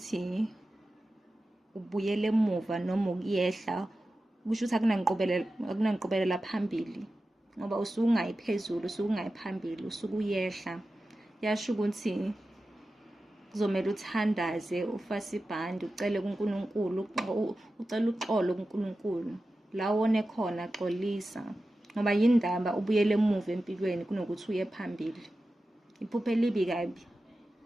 ubuyele emuva noma ukuyehla, kusho ukuthi akunanqobelela phambili ngoba usuke ungayiphezulu, usuke ungayiphambili, usuke uyehla. Yasho ukuthi kuzomela uthandaze, ufase ibhande, ucele kuNkulunkulu, ucela uxolo kuNkulunkulu la wone khona, xolisa ngoba yindaba ubuyele emuva empilweni kunokuthi uye phambili. Iphupho elibi kabi.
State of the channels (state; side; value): normal; both; correlation 0.93